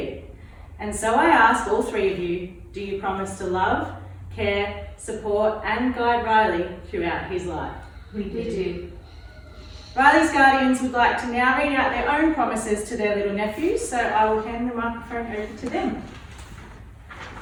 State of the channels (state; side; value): identical; both; correlation 1.00